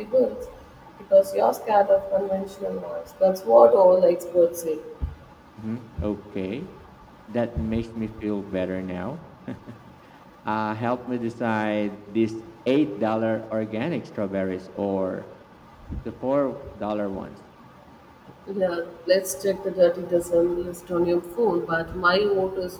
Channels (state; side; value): identical; both; correlation 1.00